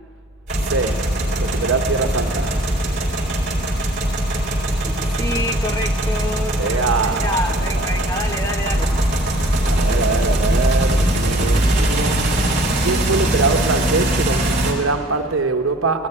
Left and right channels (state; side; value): normal; both; correlation 0.51